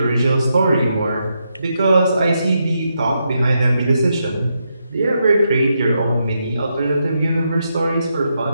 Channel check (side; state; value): both; inverted; correlation -0.82